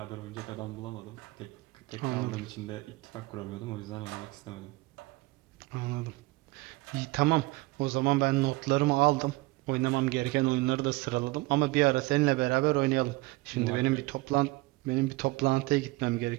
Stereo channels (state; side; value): quieter; left; 22.0 dB